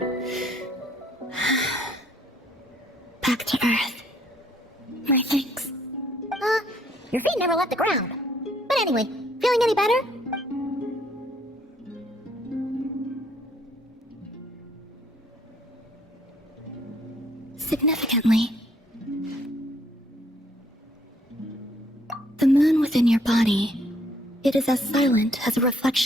Back to Earth. My thanks. Your feet never left the ground. But anyway, feeling any better? Significantly, the moon within your body, it is as silent as a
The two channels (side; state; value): both; normal; correlation 0.65